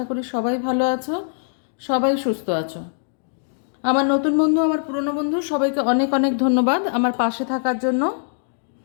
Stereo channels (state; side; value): silent; right; digital silence